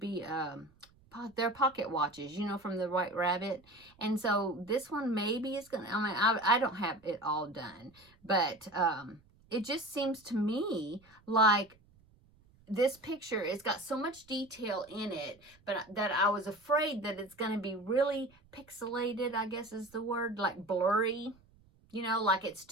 they're pocket watches, from the White Rabbit. And so this one maybe is gonna, I don't have it all done, but it just seems to me like this picture, it's got so much detail in it, but that I was afraid that it's gonna be really pixelated, I guess is the word, like blurry, like it's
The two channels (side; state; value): right; noise; rumble, 30 dB below the sound